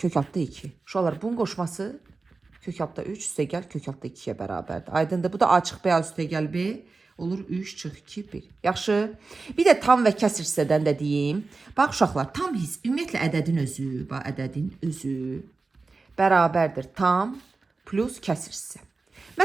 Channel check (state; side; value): quieter; left; 3.9 dB